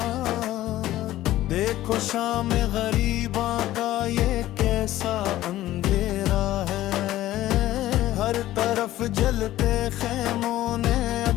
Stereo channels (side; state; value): right; quieter; 14.8 dB